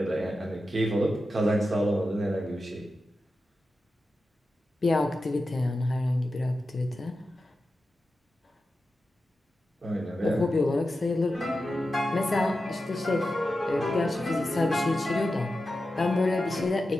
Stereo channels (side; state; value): both; normal; correlation 0.91